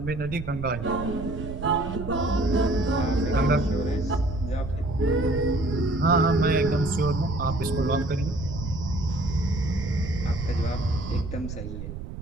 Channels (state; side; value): noise; right; rumble, 8 dB below the sound